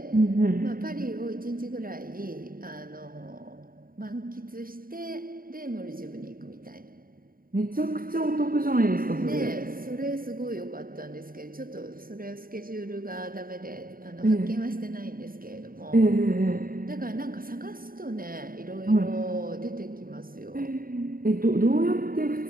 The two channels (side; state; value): left; late; 0.42 ms